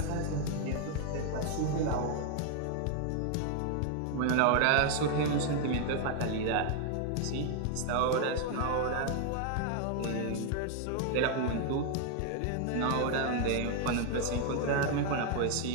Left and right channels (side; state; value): both; different; correlation 0.00